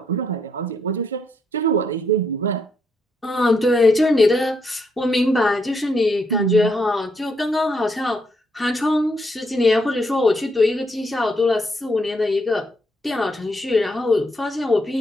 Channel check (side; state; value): both; normal; correlation 0.76